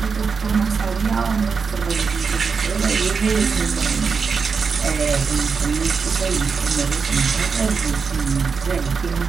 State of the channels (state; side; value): quieter; left; 5.4 dB